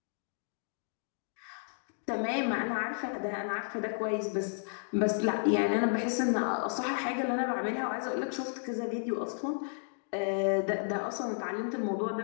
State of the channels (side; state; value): right; silent; digital silence